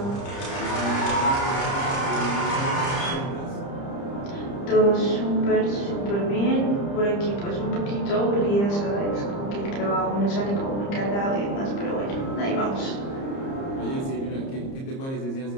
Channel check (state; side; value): late; right; 30 ms